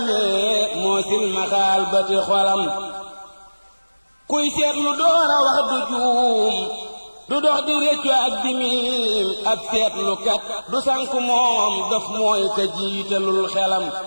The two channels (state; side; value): inverted; both; correlation -1.00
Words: moo silmaxaal bëti xolam kuy seetlu door a wax du juum du dox di réccu ak di miim ab seetlu kat du sànk moom daf mooy ka jiitalul xelam